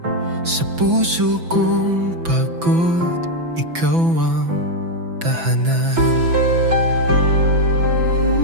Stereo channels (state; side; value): late; left; 6.0 ms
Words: Sa puso kong pagod, ikaw ang tahanan.